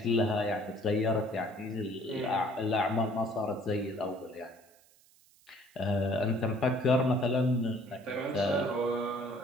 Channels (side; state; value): right; noise; hiss, 29 dB below the sound